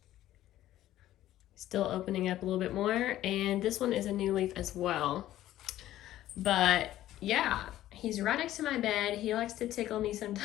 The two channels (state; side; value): quieter; right; 13.8 dB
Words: Still opening up a little bit more, and this one is a new leaf as well. But yeah, he's right next to my bed. He likes to tickle me